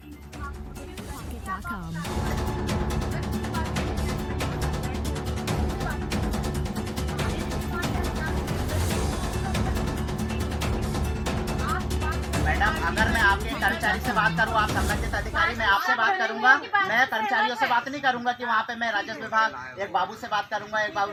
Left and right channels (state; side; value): identical; both; correlation 1.00